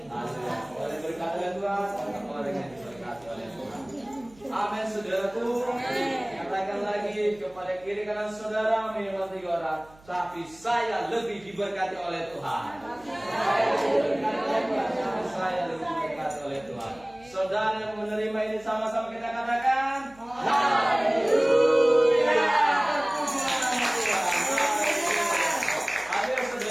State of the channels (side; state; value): right; noise; hum, 26 dB below the sound